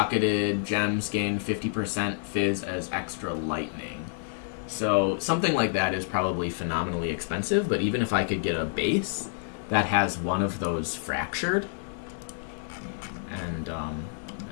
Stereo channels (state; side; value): silent; right; digital silence